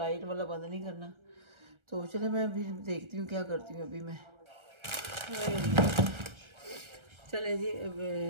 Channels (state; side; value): late; left; 1.3 ms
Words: वाला बंद नहीं करना। तो चलो मैं अभी देखती हूँ क्या करती हूँ अभी मैं। चले जी